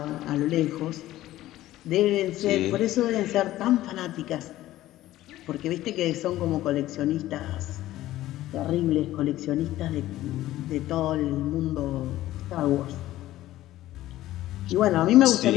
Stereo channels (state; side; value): quieter; right; 15.0 dB